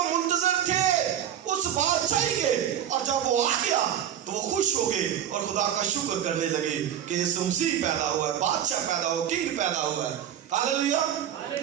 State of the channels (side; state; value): left; quieter; 9.9 dB